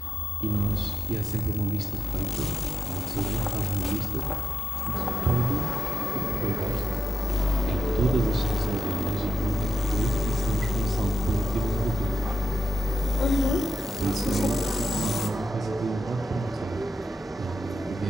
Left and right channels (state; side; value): normal; both; correlation 0.83